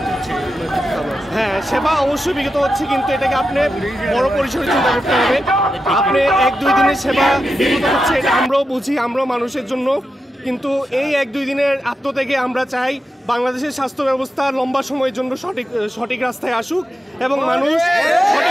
হচ্ছে। হ্যাঁ, সেবা অবশ্যই বিঘ্নিত হচ্ছে, কিন্তু এটাকে আপনি বড় পরিসরে চিন্তা করতে হবে। আপনি 1-2 দিনের সেবা বিঘ্নিত হচ্ছে এটা আমরাও বুঝি, আমরাও মানুষের জন্য, কিন্তু এই 1-2 দিনের আত্মত্যাগে আমরা চাই বাংলাদেশের স্বাস্থ্য ব্যবস্থা লম্বা সময়ের জন্য সঠিক রাস্তায় আসুক এবং মানুষ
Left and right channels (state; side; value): normal; both; correlation 0.89